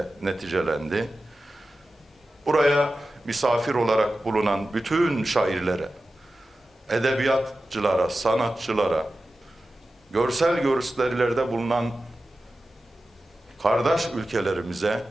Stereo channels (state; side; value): normal; both; correlation 0.94